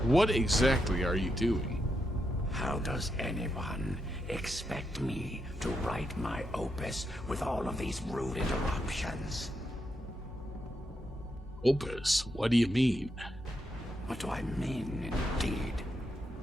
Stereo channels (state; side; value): normal; both; correlation 0.83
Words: What exactly are you doing? How does anyone expect me to write my opus with all of these rude interruptions? Opus? What do you mean? What do I mean, indeed?